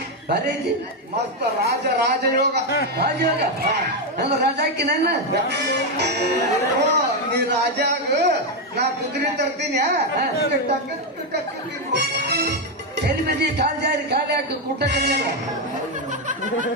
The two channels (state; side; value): normal; both; correlation 0.05